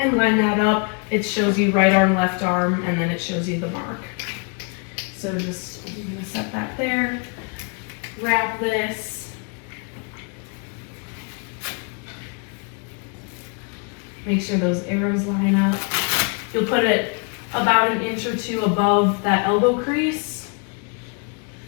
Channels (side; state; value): right; quieter; 35.6 dB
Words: line that up. It shows you right arm, left arm, and then it shows you the mark. So I'm gonna set that there. Wrap this. Make sure those arrows line up. You'll put it about an inch or two above that elbow crease.